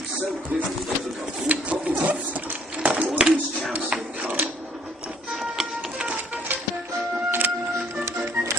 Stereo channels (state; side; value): normal; both; correlation 0.61